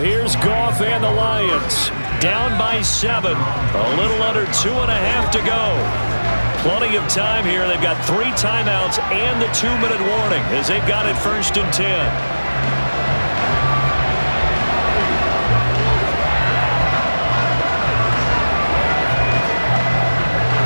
here's Goff and the Lions. Down by 7. A little under 2.5 to go. Plenty of time here. They've got 3 timeouts and the 2-minute warning as they've got it 1st and 10.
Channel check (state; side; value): inverted; both; correlation -1.00